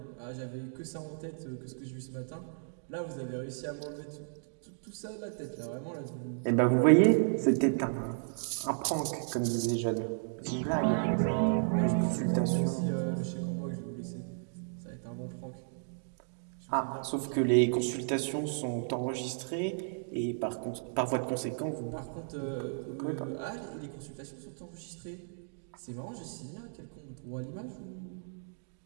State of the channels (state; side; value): silent; left; digital silence